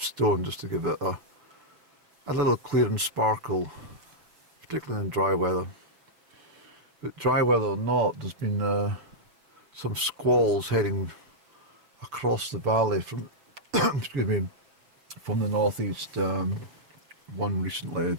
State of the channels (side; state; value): left; late; 6.7 ms